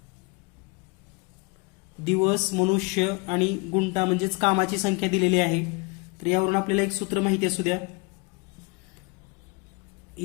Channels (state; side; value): quieter; right; 28.6 dB